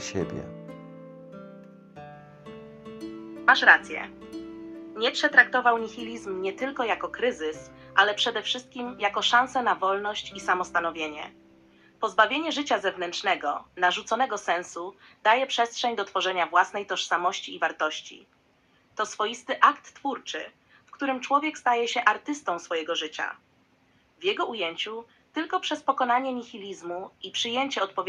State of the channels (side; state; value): both; identical; correlation 1.00